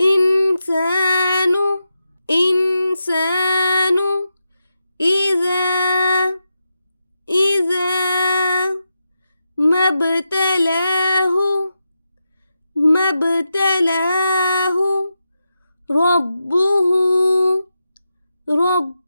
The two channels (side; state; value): both; inverted; correlation -0.88